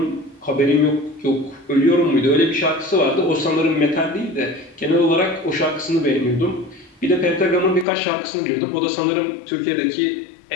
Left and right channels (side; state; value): right; drops out; at 7.9 s